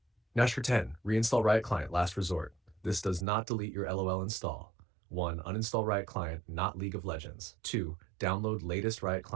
Hash 10. Reinstall Riot Client, last resort. This does not delete your LOL install. 1. Uninstall Riot Client, not League of Legends. 2. Download latest Riot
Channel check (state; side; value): drops out; left; at 3.2 s